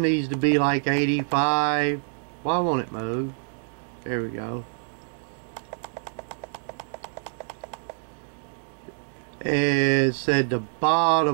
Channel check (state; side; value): silent; left; digital silence